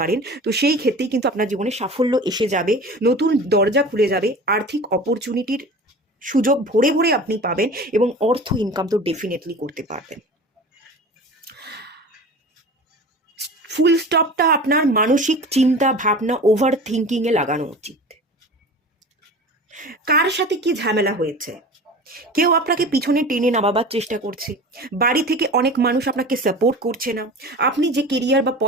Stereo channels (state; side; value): normal; both; correlation 0.36